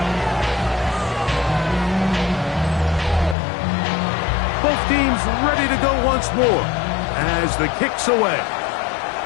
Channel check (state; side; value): drops out; right; at 3.4 s